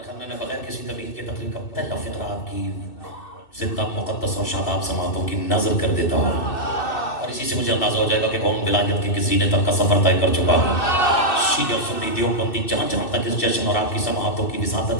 मैं बगैर किसी तबीयत के तकलीफ का पहला फिक्रा आपकी जिंदा मुकद्दस और शादाब समातों की नजर कर देता हूँ, और इसी से मुझे अंदाजा हो जाएगा कि कौन विलायत के किसी ने तक का सफर तय कर चुका है। शीया और सुन्नी देवबंदी जहाँ जहाँ तक इस जश्न और आपकी समातों की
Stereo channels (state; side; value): late; right; 2.6 ms